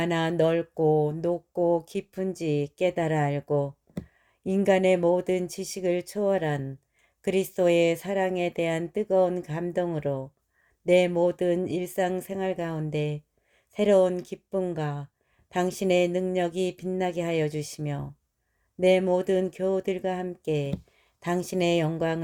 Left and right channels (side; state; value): both; identical; correlation 1.00